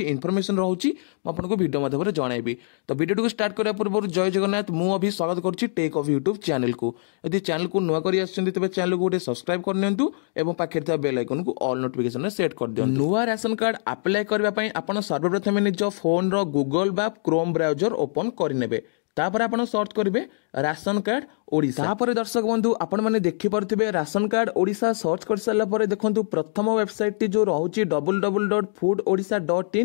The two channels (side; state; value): right; silent; digital silence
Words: इनफॉरमेशन रोचे मुझे वीडियो माध्यम जनइबी। तो वीडियो को स्टार्ट करने पूर्व जय जगन्नाथ मुझे स्वागत करुच्ची टेक ऑफ यूट्यूब चैनल को। यदि चैनल को नुआ कर तेज चैनल को गोटे सब्सक्राइब कर पाखे बेल आइकन को ऑल नोटिफिकेशन सेट कर दियो। नुआ राशन कार्ड अप्लाई करने आप सर्वप्रथम निज फोन रो गूगल बा क्रोम ब्राउजर ओपन करने तापर आपण सर्च करेंगे राशन कार्ड ओडिशा। तापर दर्शक बंधु आपण मैंने देखिपे राशन कार्ड ओडिशा सर्च कर सारा पर देखो प्रथम वेबसाइट टी जो रोचे